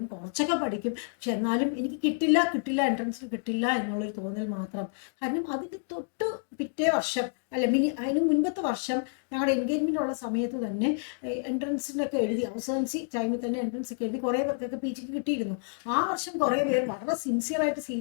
കുറച്ചൊക്കെ പഠിക്കും. പക്ഷെ എന്നാലും എനിക്ക് കിട്ടില്ല എൻട്രൻസിൽ കിട്ടില്ല എന്നുള്ളൊരു തോന്നൽ മാത്രം. കാരണം അതിന് തൊട്ട് പിറ്റേ വർഷം അതിന് മുൻപത്തെ വർഷം ഞങ്ങളുടെ എൻഗേജ്മെൻ്റ് ഉള്ള സമയത്ത് തന്നെ എൻട്രൻസിനൊക്കെ എഴുതി, അവസാനിച്ച് ടൈമിൽ തന്നെ എൻട്രൻസ് ഒക്കെ എഴുതി കുറേ പേർക്കൊക്കെ PG കിട്ടിയിരുന്നു. ആ വർഷം കുറേ പേർ വളരെ സിൻസിയറായിട്ട്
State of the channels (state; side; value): silent; right; digital silence